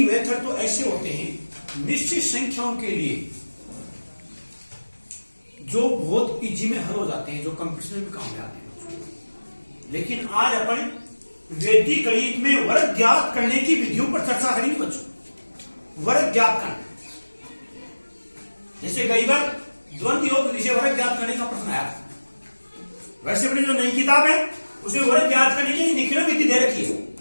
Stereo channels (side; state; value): both; inverted; correlation -1.00